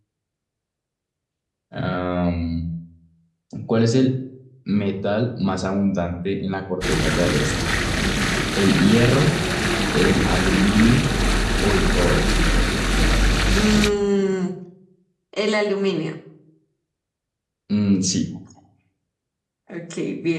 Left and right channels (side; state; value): both; identical; correlation 1.00